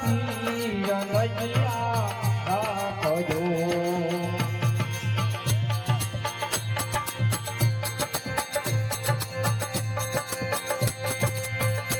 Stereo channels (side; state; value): both; identical; correlation 1.00